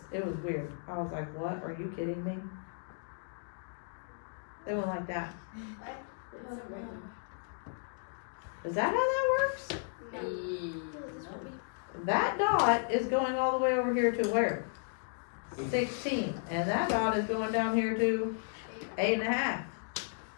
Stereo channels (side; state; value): right; silent; digital silence